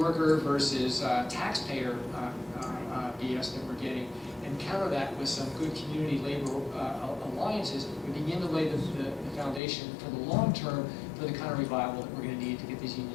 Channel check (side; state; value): right; drops out; at 9.6 s